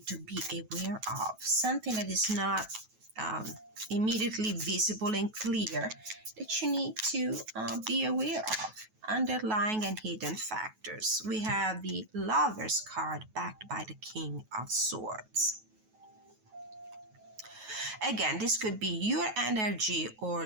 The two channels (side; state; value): left; late; 9.3 ms